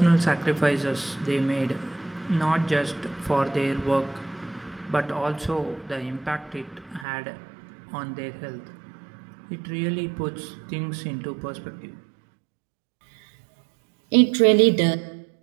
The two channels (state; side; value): drops out; left; at 7.1 s